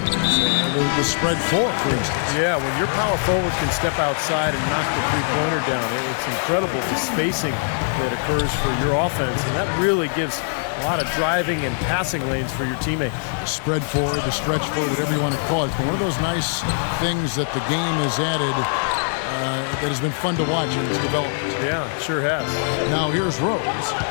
The spread 4, for instance. Yeah, when your power forward can step outside and knock the three-pointer down, it's incredible the spacing that occurs for your offense, and that really gives a lot of driving and passing lanes for your teammates. The spread 4, the stretch 4, whatever you want to call it. It's been one of those nice things that the game has added that has been fun to watch in its development. Yeah, sure has. Now here's Rose.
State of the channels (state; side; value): silent; right; 59 dB below the other